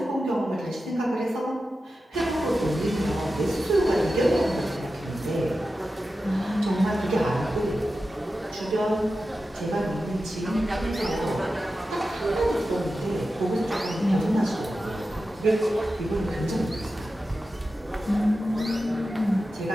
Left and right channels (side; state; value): both; normal; correlation 0.92